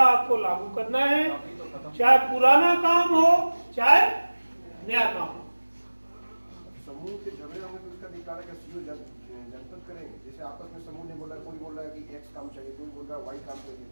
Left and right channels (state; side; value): inverted; both; correlation -1.00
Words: आपको लागू करना है, चाहे पुराना काम हो चाहे नया काम हो। समूह के झगड़े होंगे तो उसका निकाला का सीओ जनपद करेंगे। जैसे आपस में समूह ने बोला, कोई बोल रहा है कि X काम चाहिए, कोई बोल रहा है Y काम चाहिए,